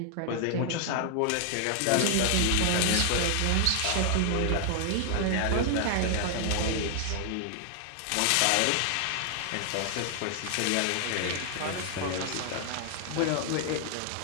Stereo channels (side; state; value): both; different; correlation 0.00